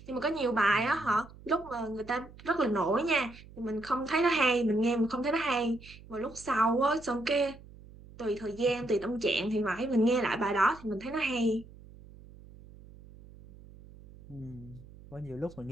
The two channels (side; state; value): right; noise; hum, 20 dB below the sound